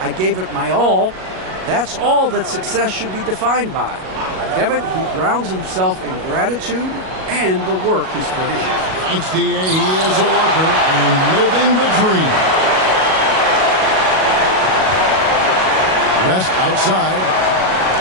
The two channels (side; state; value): left; late; 37 ms